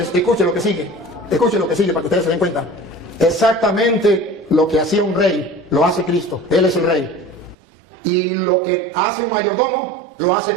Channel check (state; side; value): drops out; left; at 7.6 s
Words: escuche lo que sigue para que ustedes se den cuenta. Exactamente lo que hacía un rey, lo hace Cristo. Él es el rey. Y lo que hace un mayordomo, lo hace